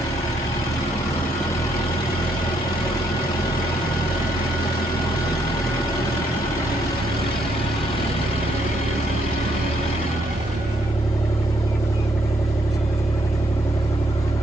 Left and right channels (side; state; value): both; normal; correlation 0.73